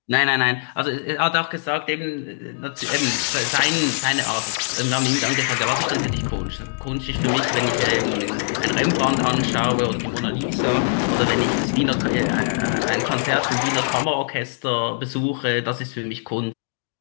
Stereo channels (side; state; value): right; silent; digital silence